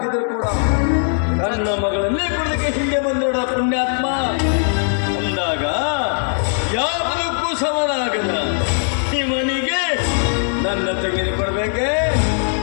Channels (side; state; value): right; silent; digital silence